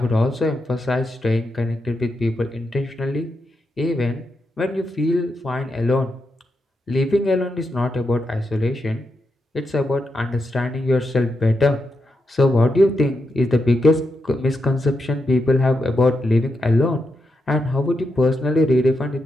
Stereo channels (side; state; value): both; normal; correlation 0.85